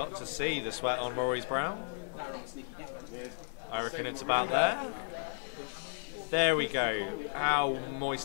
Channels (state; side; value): silent; right; digital silence